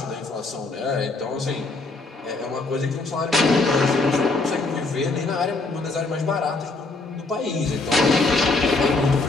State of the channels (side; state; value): right; quieter; 3.4 dB